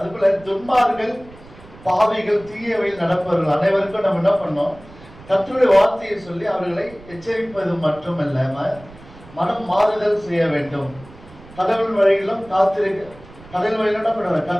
துன்மார்கள், பாவிகள், தீயவையில் நடப்பவர்கள் அனைவருக்கும் நம்ம என்ன பண்ணோம், கர்த்தருடைய வார்த்தையை சொல்லி அவர்களை எச்சரிப்பது மட்டுமல்லாம மனம் மாறுதல் செய்ய வேண்டும். கடவுள் வழியிலும் கடல் வழியிலும் என்ன பண்ணுவாங்க,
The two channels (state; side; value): noise; right; rumble, 21 dB below the sound